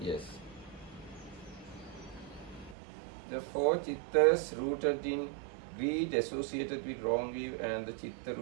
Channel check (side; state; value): left; drops out; at 2.8 s